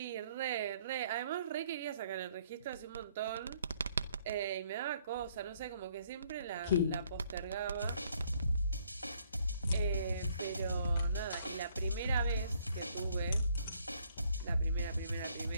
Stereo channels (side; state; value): both; inverted; correlation -0.66